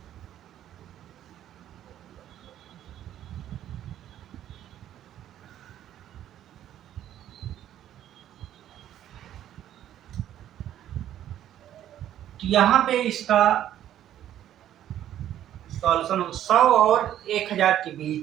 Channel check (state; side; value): quieter; left; 11.5 dB